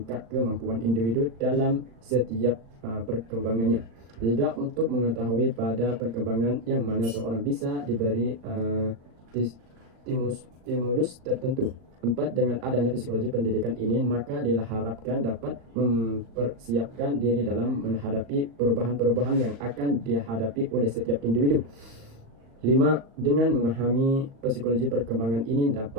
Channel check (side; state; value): left; late; 37 ms